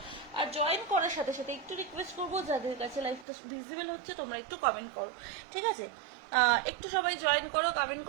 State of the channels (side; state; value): left; drops out; at 3.2 s